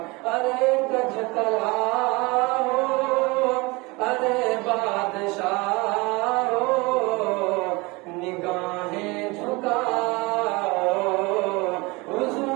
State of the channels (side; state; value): left; quieter; 24.9 dB